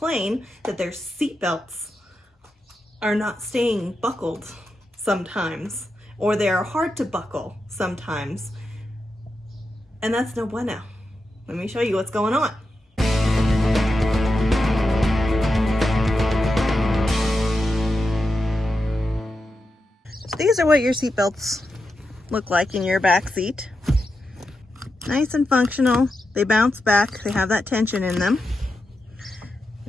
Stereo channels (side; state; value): both; normal; correlation 0.88